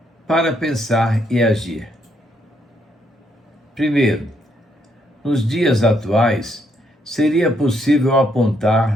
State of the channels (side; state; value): both; normal; correlation 0.73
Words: Para pensar e agir. Primeiro, nos dias atuais, seria possível